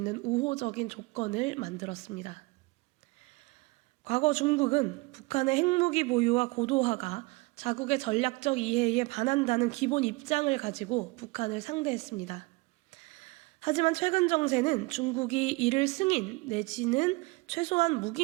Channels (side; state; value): left; quieter; 25.0 dB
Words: 우호적인 조건을 만들었습니다. 과거 중국은 북한의 핵무기 보유와 고도화가 자국의 전략적 이해에 반한다는 기본 입장을 가지고 북한을 상대했습니다. 하지만 최근 정세는 중국이 이를 승인 내지는 최소한